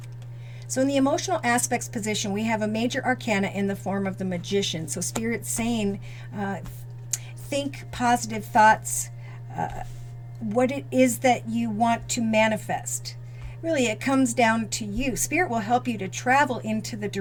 So in the emotional aspects position, we have a major arcana in the form of the Magician. So Spirit's saying, think positive thoughts, what it is that you want to manifest. Really, it comes down to you. Spirit will help you to travel into the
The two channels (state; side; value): identical; both; correlation 1.00